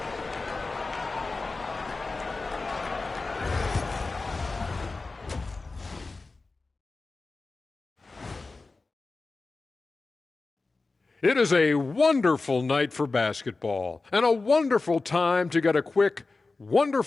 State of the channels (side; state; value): right; quieter; 3.7 dB